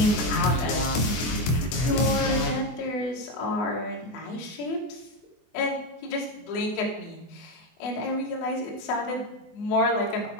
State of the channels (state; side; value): late; right; 24 ms